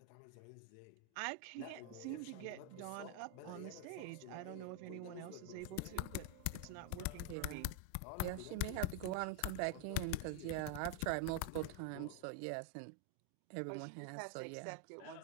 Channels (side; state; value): both; different; correlation 0.00